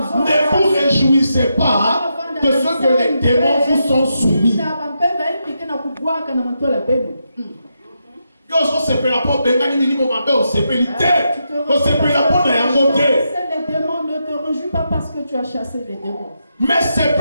vous réjouissez pas de ce que les démons vous sont soumis. Les démons ne te réjouissent pas parce que tu as chassé les démons. Mais c'est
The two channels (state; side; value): inverted; both; correlation -0.84